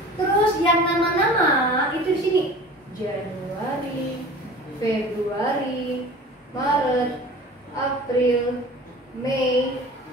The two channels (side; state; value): both; normal; correlation 0.41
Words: Terus yang nama-nama itu di sini. Januari, Februari, Maret, April, Mei,